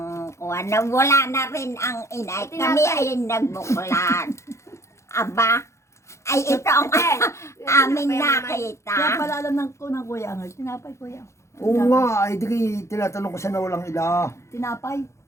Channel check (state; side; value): late; right; 0.14 ms